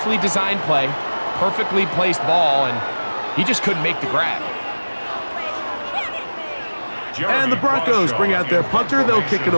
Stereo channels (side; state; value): both; inverted; correlation -1.00